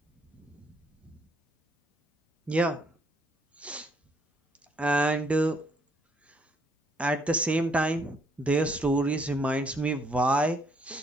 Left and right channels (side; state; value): both; normal; correlation 0.68